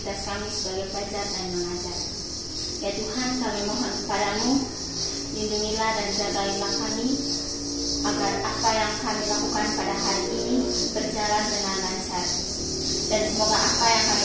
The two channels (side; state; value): both; identical; correlation 1.00